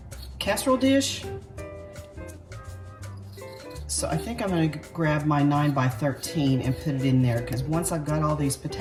casserole dish. So I think I'm gonna grab my 9x13 and put it in there, because once I've got all these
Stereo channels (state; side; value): identical; both; correlation 1.00